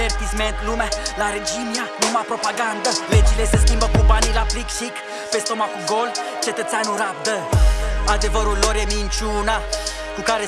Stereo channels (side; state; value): both; identical; correlation 1.00